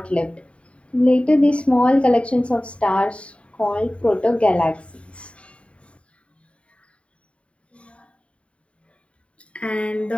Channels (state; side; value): late; right; 0.061 ms